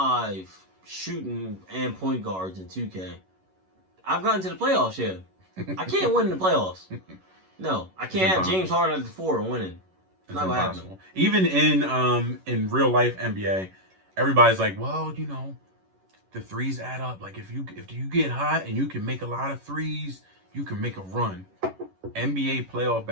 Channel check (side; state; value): left; late; 11 ms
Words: shooting and point guards in 2K. I've gotten to the playoffs. Yeah, I can't win in the playoffs. No, I can't have James Harden at the 4 and winning. It's not gonna happen. Even in real life NBA, everybody's like, well, you know, the threes add up. Like if you get hot and you can make a lot of threes, you can make a run. NBA playoff